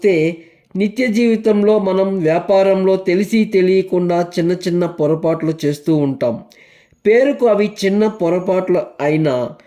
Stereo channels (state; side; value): identical; both; correlation 1.00